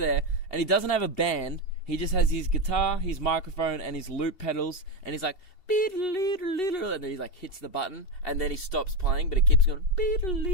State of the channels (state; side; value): late; right; 2.7 ms